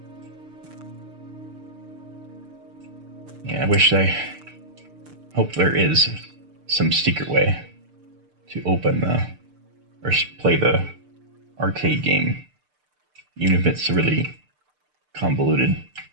Yeah, I hope there is some secret way to open or play the arcade game, even if it's a really convoluted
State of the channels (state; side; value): late; left; 6.7 ms